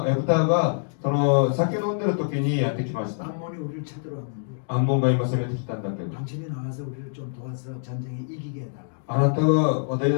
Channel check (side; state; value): right; silent; digital silence